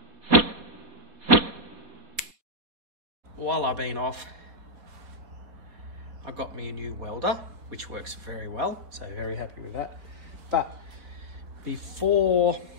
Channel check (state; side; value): late; left; 4.2 ms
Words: While I've been off, I got me a new welder, which works very well, so very happy with that. But before